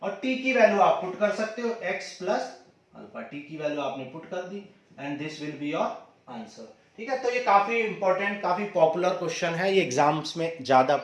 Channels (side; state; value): both; identical; correlation 1.00